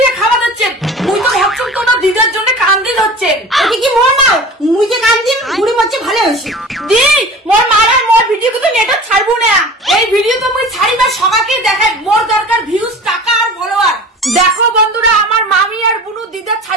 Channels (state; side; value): normal; both; correlation 0.38